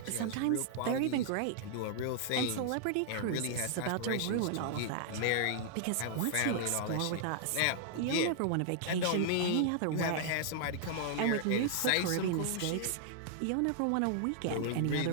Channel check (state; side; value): different; both; correlation -0.01